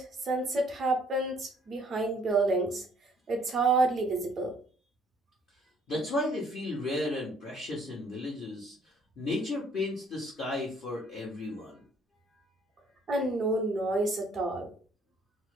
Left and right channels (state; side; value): normal; both; correlation 0.62